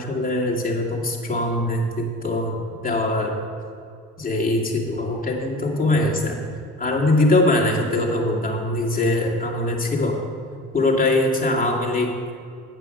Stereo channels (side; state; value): both; normal; correlation 0.36